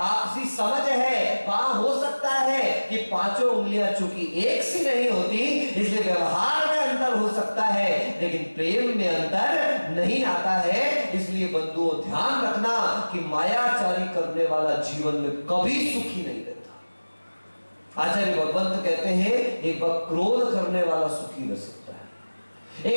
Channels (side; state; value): both; inverted; correlation -1.00